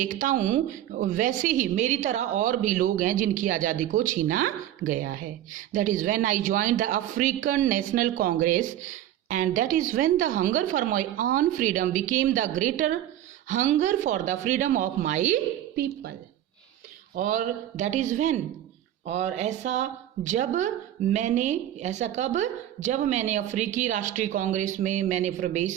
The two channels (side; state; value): left; quieter; 12.3 dB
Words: हूँ वैसे ही मेरी तरह और भी लोग हैं जिनकी आज़ादी को छीना गया है। That is when I joined the African national Congress and that is when the hunger for my own freedom became the greater hunger for the freedom of my people. और दैट इज़ व्हेन, और ऐसा जब मैंने, ऐसा कब, जब मैंने अफ्रीकी राष्ट्रीय कांग्रेस में मैंने प्रवेश